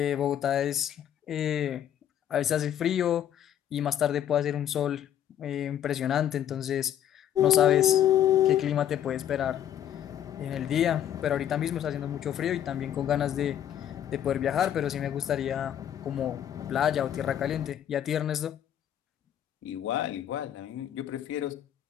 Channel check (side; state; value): right; quieter; 10.4 dB